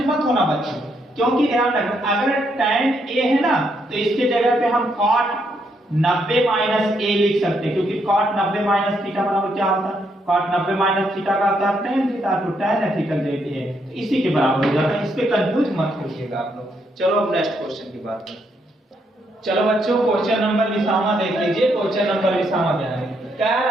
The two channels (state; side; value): normal; both; correlation 0.76